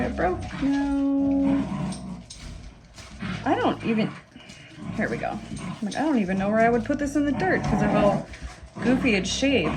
it broke. No, I don't even, here we go. I'm like, I don't even know where I would put this in the dirt because of how goofy it's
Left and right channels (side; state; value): both; identical; correlation 1.00